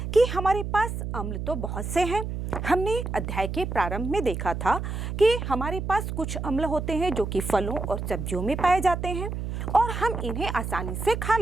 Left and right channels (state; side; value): noise; right; hum, 5 dB below the sound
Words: कि हमारे पास अम्ल तो बहुत से हैं। हमने अध्याय के प्रारंभ में देखा था कि हमारे पास कुछ अम्ल होते हैं जो कि फलों और सब्जियों में पाए जाते हैं और हम इन्हें आसानी से खा